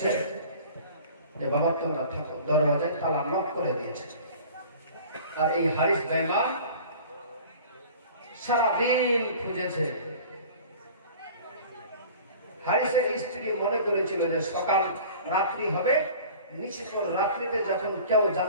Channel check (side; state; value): both; inverted; correlation -0.44